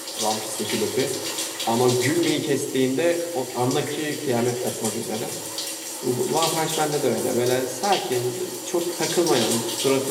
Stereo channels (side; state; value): both; identical; correlation 1.00